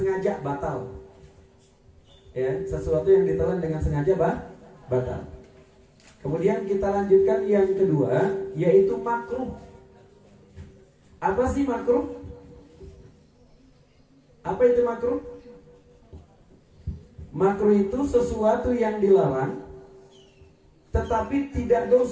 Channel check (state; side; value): identical; both; correlation 1.00